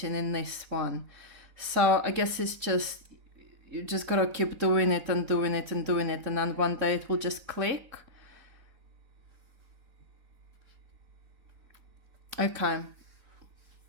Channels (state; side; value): late; left; 3.9 ms